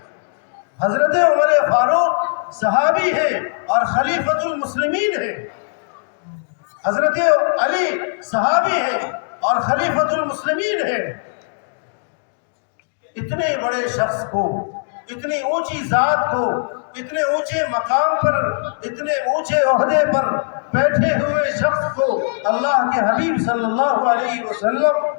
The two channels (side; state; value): right; silent; digital silence